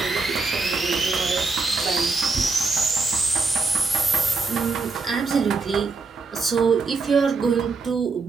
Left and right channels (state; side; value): quieter; left; 4.1 dB